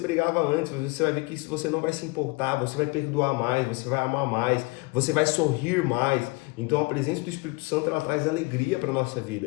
antes. Você vai ver que você não vai se importar, você vai perdoar mais, você vai amar mais, você vai sorrir mais. Então a presença do Espírito Santo, ela traz alegria para a nossa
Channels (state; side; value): quieter; right; 25.8 dB